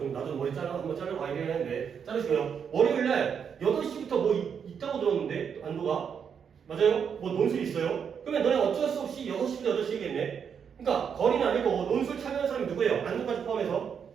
나도 머리 한번 자르고 가야 되는데 자르시고요. 월요일날 8시부터 뭐 있다고 들었는데 안도가 맞아요? 뭐 논술 있어요? 그러면 너네 어쩔 수 없이 6시부터 8시겠네? 그러니까 거리는 아니고 논술 참여하는 사람이 누구예요? 안도까지 포함해서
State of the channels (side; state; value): left; quieter; 7.2 dB